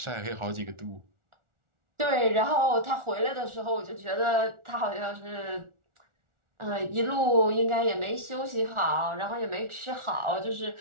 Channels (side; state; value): left; late; 1.4 ms